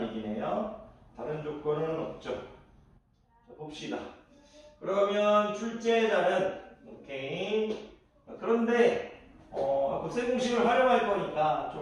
얘기네요. 다른 조건은 없죠. 자, 봅시다. 그러면 출제자는 오케이. 그런데 곱셈 공식을 활용할 거니까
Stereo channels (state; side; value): identical; both; correlation 1.00